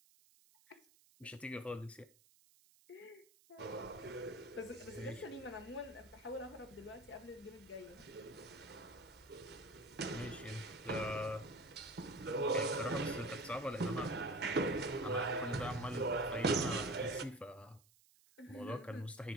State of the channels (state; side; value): noise; right; hiss, 28 dB below the sound